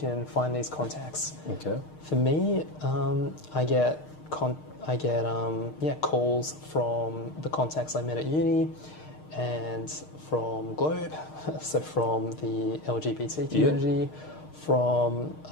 find these contacts. Okay. For me, I get calls from the contacts I met at uni and from Globe, so from the LGBT community, from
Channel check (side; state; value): right; late; 6.5 ms